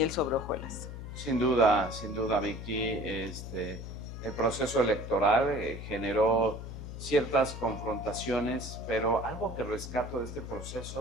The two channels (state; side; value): noise; left; hum, 9 dB below the sound